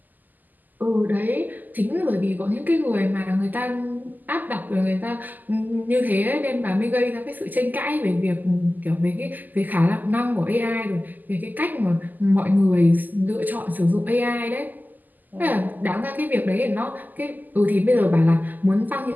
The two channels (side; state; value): left; late; 0.085 ms